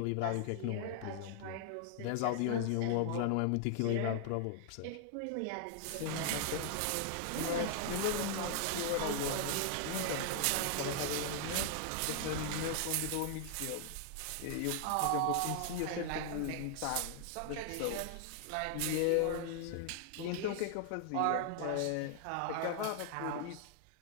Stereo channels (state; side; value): different; both; correlation -0.01